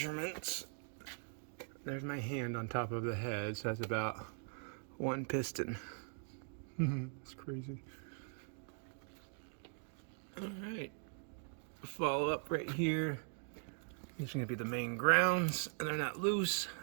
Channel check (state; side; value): silent; left; 50 dB below the other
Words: There's my hand on top of the head, so that's about 1 piston. That's crazy. All right, follow up right here. These are gonna be the main grounds, and they're not loose.